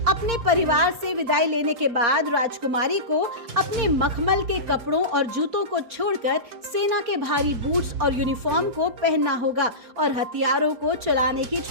अपने परिवार से विदाई लेने के बाद राजकुमारी को अपने मखमल के कपड़ों और जूतों को छोड़कर सेना के भारी बूट्स और यूनिफॉर्म को पहनना होगा और हथियारों को चलाने की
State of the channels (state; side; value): late; left; 4.3 ms